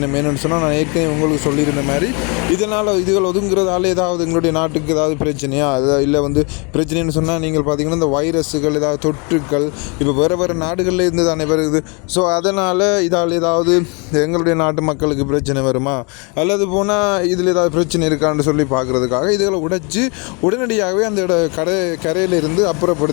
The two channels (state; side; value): quieter; right; 32.7 dB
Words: என்னென்னு சொன்னால், நான் ஏற்கனவே உங்களுக்கு சொல்லியிருந்த மாதிரி இதுகள் ஒதுங்குறதால ஏதாவது எங்களுடைய நாட்டுக்கு ஏதாவது பிரச்சனையா, இல்லை வந்து பிரச்சனைன்னு சொன்னால், நீங்கள் பார்த்தீங்கன்னா இந்த வைரஸுகள் ஏதாவது தொற்றுக்கள் இப்போ வேறு நாடுகளில் இருந்து தானே வருது. ஸோ அதனால் இதால் ஏதாவது எங்களுடைய நாட்டு மக்களுக்கு பிரச்சனை வருமா, அல்லது போனால் இதில் ஏதாவது பிரச்சனை இருக்கான்னு சொல்லி பார்க்குறதுக்காக இதுகளை உடைச்சி உடனடியாகவே அந்த கரையில் இருந்து